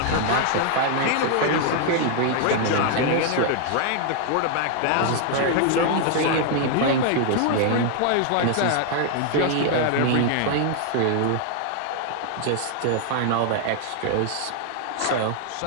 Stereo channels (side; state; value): both; different; correlation 0.00